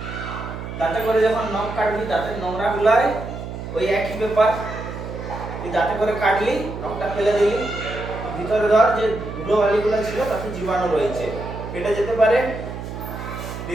দাঁতে করে যখন নখ কাটবি, দাঁতের নোংরা গুলাই ওই একই ব্যাপার, তুই দাঁতে করে কাটলি, নখটা ফেলে দিলি, ভিতরে ধর যে ধুলো বালিগুলো ছিল তাতে জীবাণু রয়েছে, পেটে যেতে পারে,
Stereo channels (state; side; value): noise; right; hum, 8 dB below the sound